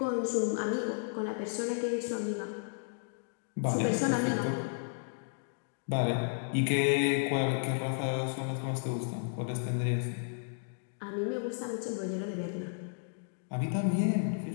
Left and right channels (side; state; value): right; silent; digital silence